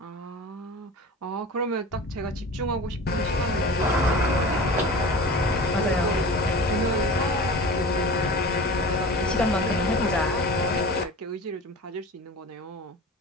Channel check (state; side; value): normal; both; correlation 0.36